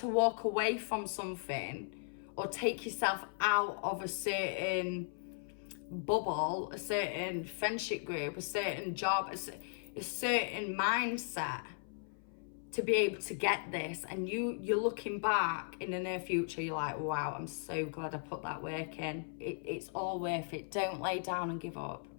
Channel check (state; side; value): silent; right; 53 dB below the other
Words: walk away from something or take yourself out of a certain bubble, a certain friendship group, a certain job, a certain mindset to be able to get this. And you're looking back in the near future, you're like, wow, I'm so glad I put that work in. It's all worth it. Don't lay down and give up,